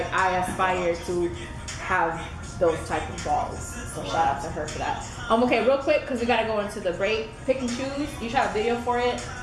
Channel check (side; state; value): both; identical; correlation 1.00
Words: I aspire to have those type of balls. So shout out to her for that. Okay, real quick, because we gotta go into the break. Pick and choose. You shot a video for it.